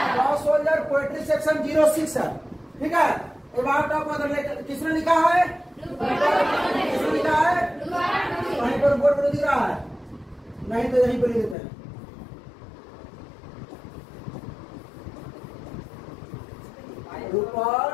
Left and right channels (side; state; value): right; drops out; at 11.6 s